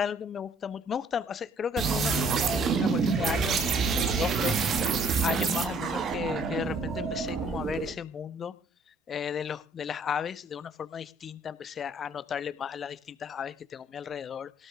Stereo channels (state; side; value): normal; both; correlation 0.61